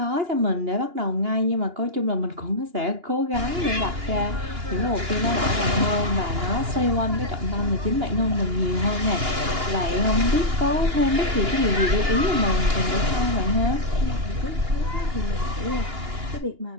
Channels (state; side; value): late; left; 2.9 ms